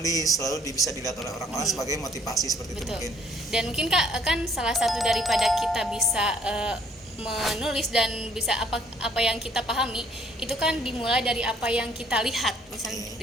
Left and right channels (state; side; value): normal; both; correlation 0.63